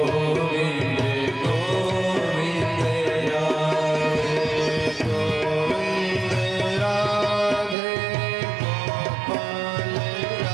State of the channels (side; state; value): left; drops out; at 7.8 s